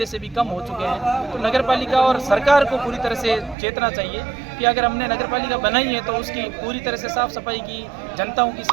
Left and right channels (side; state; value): left; drops out; at 3.6 s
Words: से भी कम हो चुके हैं। तो नगर पालिका और सरकार को पूरी तरह से चेतना चाहिए कि अगर हमने नगर पालिका बनाई है तो उसकी पूरी तरह से साफ सफाई की, जनताओं की